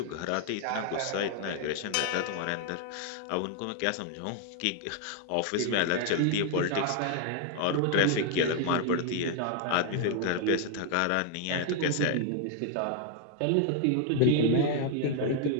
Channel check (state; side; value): different; both; correlation 0.00